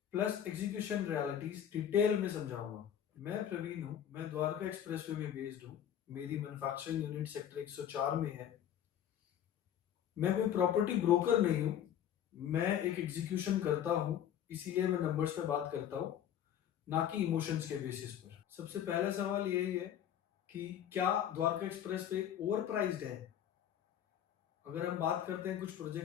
plus execution realities detail में समझाऊंगा। मैं प्रवीण हूँ, मैं द्वारका एक्सप्रेसवे में बेस्ड हूँ। मेरी मैन्युफैक्चरिंग यूनिट सेक्टर 104 में है। मैं कोई प्रॉपर्टी ब्रोकर नहीं हूँ, मैं एक एग्जीक्यूशन करता हूँ, इसीलिए मैं नंबर्स पे बात करता हूँ, ना कि इमोशंस के बेसिस पर। सबसे पहला सवाल यही है कि क्या द्वारका एक्सप्रेस पे ओवर प्राइस्ड है? अगर हम बात करते हैं कुछ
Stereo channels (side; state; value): right; quieter; 10.0 dB